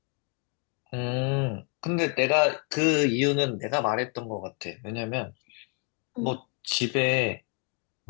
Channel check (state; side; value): quieter; right; 36.2 dB